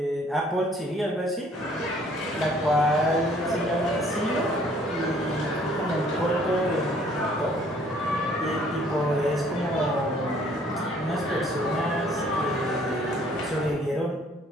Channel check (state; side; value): normal; both; correlation 0.59